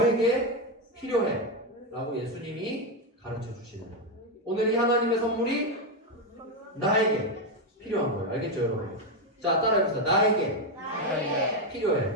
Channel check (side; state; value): both; normal; correlation 0.07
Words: 필요해 라고 예수님이 가르쳐 주시는 거예요. 오늘 이 하나님의 선물이 나에게 필요한 거예요. 알겠죠 여러분? 자 따라해보세요. 나에게